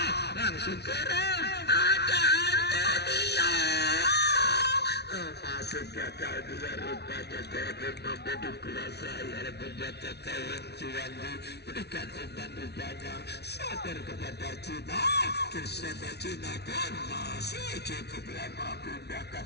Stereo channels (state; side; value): late; right; 0.49 ms